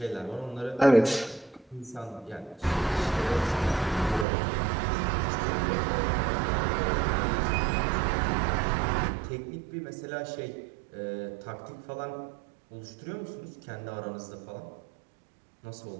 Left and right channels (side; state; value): left; drops out; at 4.2 s